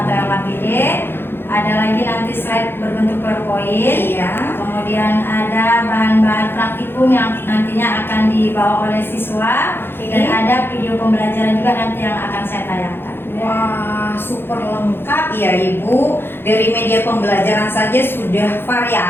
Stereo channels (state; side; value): late; right; 0.10 ms